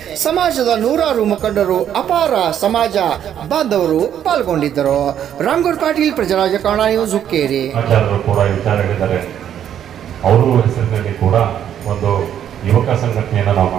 ಸಮಾಜದ ನೂರಾರು ಮುಖಂಡರು, ಅಪಾರ ಸಮಾಜ ಬಾಂಧವರು ಪಾಲ್ಗೊಂಡಿದ್ದರು. ರಾಮಗೌಡ ಪಾಟೀಲ್, ಪ್ರಜಾರಾಜ್ಯ ಕನ್ನಡ ನ್ಯೂಸ್, ಹುಕ್ಕೇರಿ. ಅವರು ಹೆಸರಿನಲ್ಲಿ ಕೂಡ ಒಂದು ಯುವಕ ಸಂಘಟನೆಯನ್ನು ನಾವು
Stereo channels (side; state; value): left; quieter; 9.9 dB